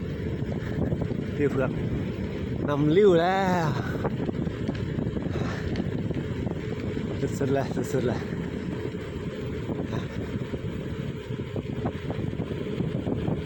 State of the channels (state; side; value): identical; both; correlation 1.00